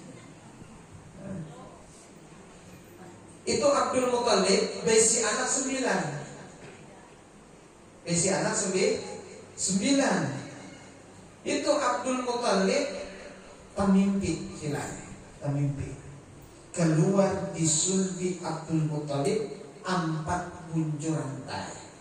Itu Abdul Muthalib besi anak 9. Besi anak 9. Itu Abdul Muthalib pemimpi hilal, pemimpi. Keluar di sulbi Abdul Muthalib 4 buncur rantai,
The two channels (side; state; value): both; identical; correlation 1.00